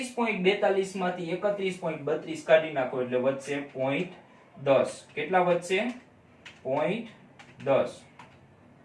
માંથી 31.32 કાઢી નાખો એટલે વધશે 0.10 કેટલા વધશે 0.10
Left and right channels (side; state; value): both; identical; correlation 1.00